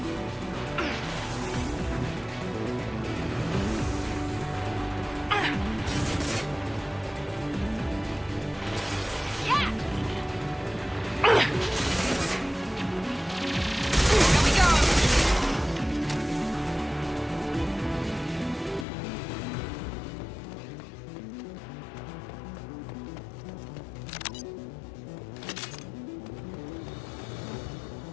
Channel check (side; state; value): right; drops out; at 18.9 s